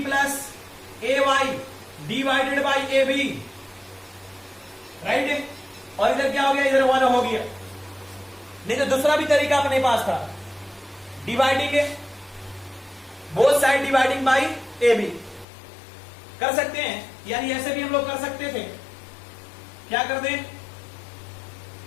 plus A y divided by A B, right? और इधर क्या हो गया? इधर 1 हो गया। नहीं तो दूसरा भी तरीका अपने पास था, dividing both side dividing by A B कर सकते हैं, यानी ऐसे भी हम लोग कर सकते थे। क्या कर दें?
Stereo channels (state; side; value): drops out; right; at 15.5 s